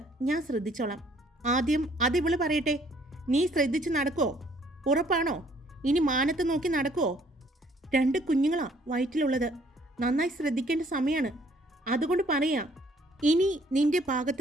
ഞാൻ ശ്രദ്ധിച്ചോളാം. ആദ്യം അതിവള് പറയട്ടെ, നീ ശ്രദ്ധിച്ച് നടക്കുമോ? ഉറപ്പാണോ? ഇനി മാനത്ത് നോക്കി നടക്കുമോ? 2 കുഞ്ഞുങ്ങളാ വയറ്റിലുള്ളത്. നന്നായി ശ്രദ്ധിക്കേണ്ട സമയമാണ്. അതുകൊണ്ട് പറയാ, ഇനി നിന്റെ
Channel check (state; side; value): normal; both; correlation 0.62